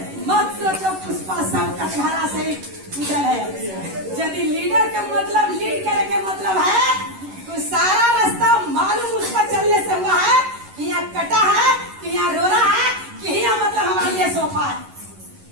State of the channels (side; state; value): left; late; 11 ms